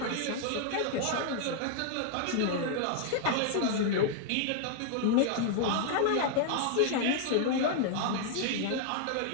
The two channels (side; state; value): both; different; correlation 0.00